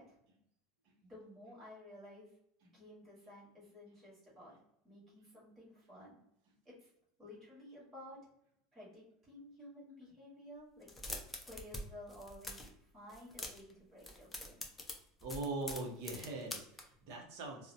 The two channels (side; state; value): both; normal; correlation 0.32